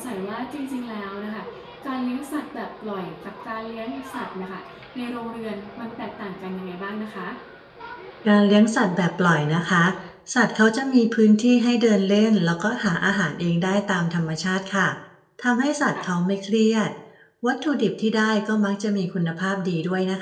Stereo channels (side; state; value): both; identical; correlation 1.00